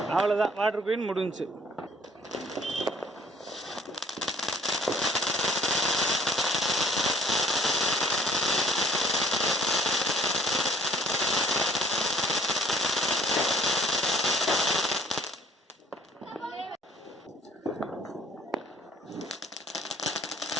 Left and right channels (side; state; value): both; normal; correlation 0.56